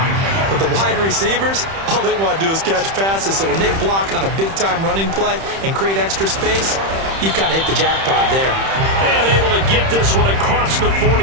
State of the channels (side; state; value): left; late; 31 ms